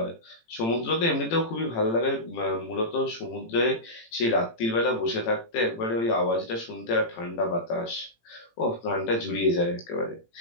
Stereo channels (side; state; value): right; late; 18 ms